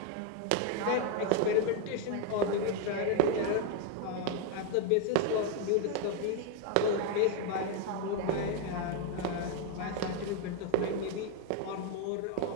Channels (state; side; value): different; both; correlation 0.01